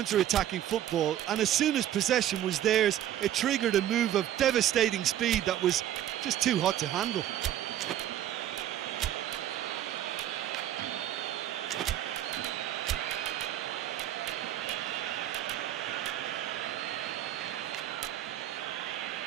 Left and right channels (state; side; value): quieter; left; 11.8 dB